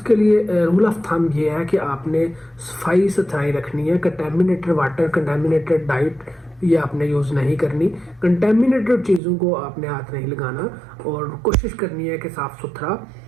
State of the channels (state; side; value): drops out; left; at 9.2 s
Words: لیے رول آف تھم یہ ہے کہ آپ نے صفائی ستھرائی رکھنی ہے. کنٹامینیٹڈ واٹر، کنٹامینیٹڈ ڈائٹ یہ آپ نے یوز نہیں کرنی. کنٹامینیٹڈ چیزوں کو آپ نے ہاتھ نہیں لگانا، اور کوشش کرنی ہے کہ